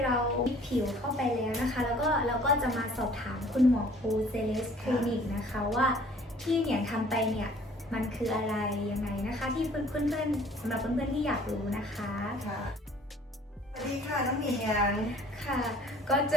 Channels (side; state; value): both; normal; correlation 0.53